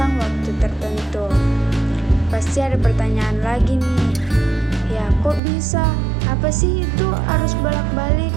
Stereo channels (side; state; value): left; drops out; at 5.4 s